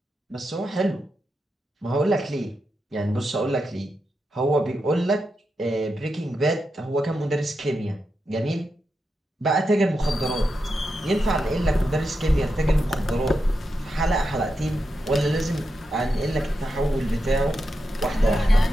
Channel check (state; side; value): normal; both; correlation 0.87